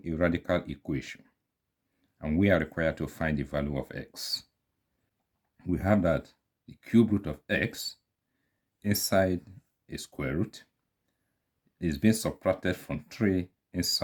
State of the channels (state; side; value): identical; both; correlation 1.00